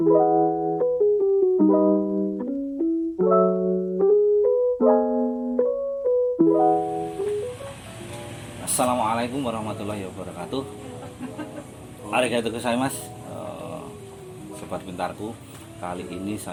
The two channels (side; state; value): both; identical; correlation 1.00